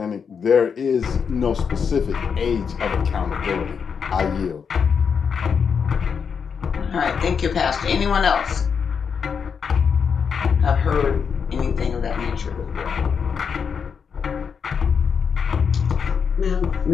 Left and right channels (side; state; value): right; quieter; 6.4 dB